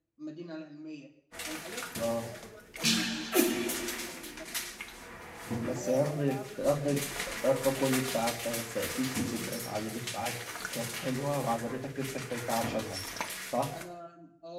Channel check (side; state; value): both; identical; correlation 1.00